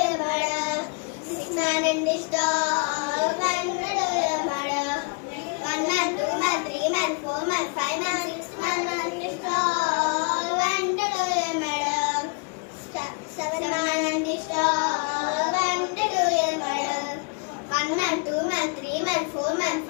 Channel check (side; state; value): right; quieter; 33.7 dB